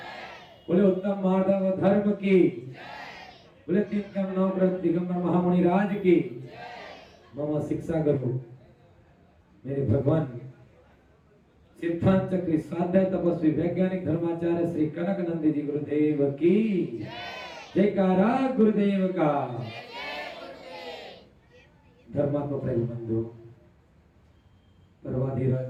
बोले उत्तम माधव धर्म की, बोले 3 कम 9 ग्रंथ दिगंबर महामुनि राज की, मम शिक्षा गुरु मेरे भगवान सिद्धांत चक्री स्वाध्याय तपस्वी वैज्ञानिक धर्माचार्य श्री कनक नंदी जी गुरुदेव की जयकारा गुरुदेव का। धर्मात्मा प्रेम बंधु पर्वाधिराज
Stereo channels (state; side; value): identical; both; correlation 1.00